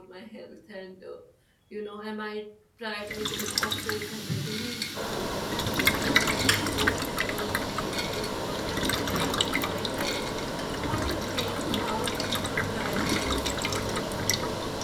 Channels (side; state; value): both; identical; correlation 1.00